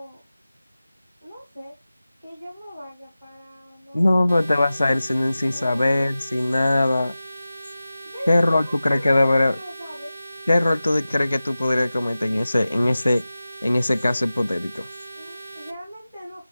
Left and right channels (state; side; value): inverted; both; correlation -0.95